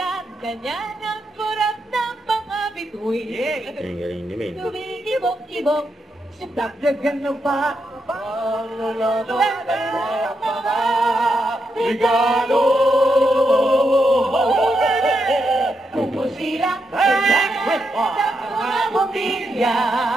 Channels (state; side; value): normal; both; correlation 0.83